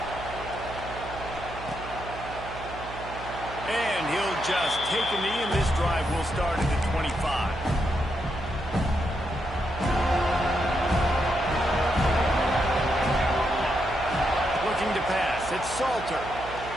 And he'll just take a knee, and this drive will start at the 25. Looking to pass. It's Salter.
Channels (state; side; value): noise; right; hum, 13 dB below the sound